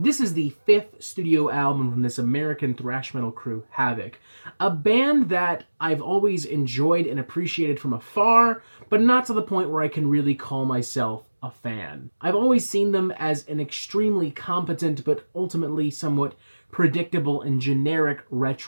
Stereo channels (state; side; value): inverted; both; correlation -1.00